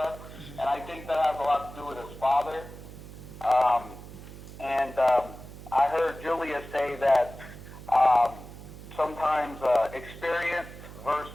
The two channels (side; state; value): right; noise; hum, 15 dB below the sound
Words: and I think that has a lot to do with his father. I heard Julia say that sometimes experience